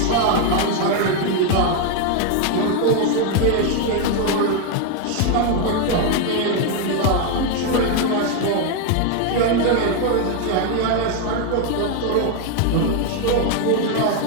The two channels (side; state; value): both; different; correlation 0.01